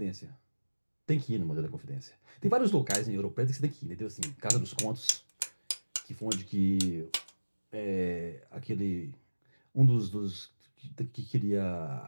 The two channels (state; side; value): inverted; both; correlation -1.00